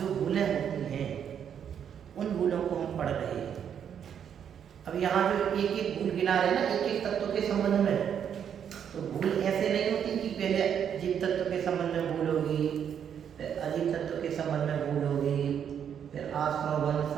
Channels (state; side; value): quieter; left; 8.4 dB